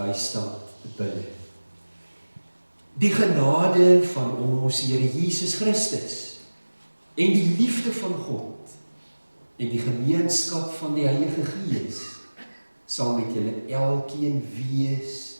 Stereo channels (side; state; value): both; inverted; correlation -1.00